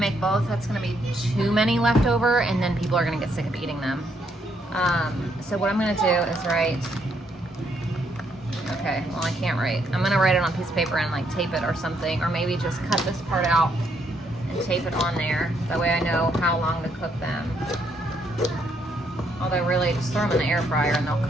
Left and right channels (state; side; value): normal; both; correlation 0.73